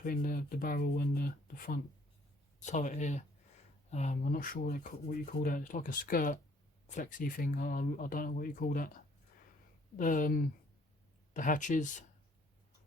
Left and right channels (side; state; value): both; normal; correlation 0.61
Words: the barrel and the front turret here. I'm not sure what you call that. It's like a skirt flexy thing. I don't know what you call that. The hatches,